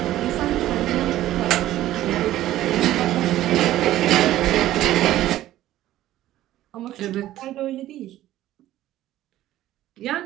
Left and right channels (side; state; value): left; quieter; 14.1 dB